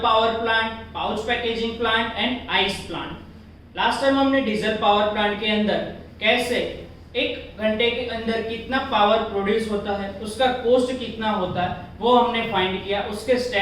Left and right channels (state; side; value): identical; both; correlation 1.00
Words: power plant, pouch packaging plant and ice plant. Last time हमने डीजल पावर प्लांट के अंदर कैसे एक घंटे के अंदर कितना पावर प्रोड्यूस होता है, उसका कॉस्ट कितना होता है, वो हमने फाइंड किया। उसके